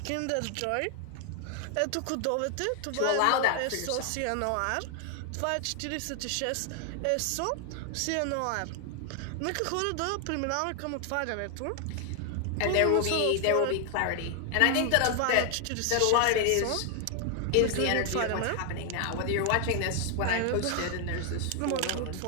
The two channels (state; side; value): different; both; correlation 0.00